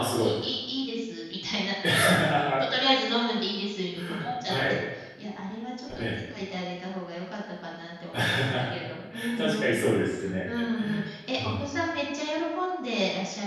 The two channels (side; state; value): both; identical; correlation 1.00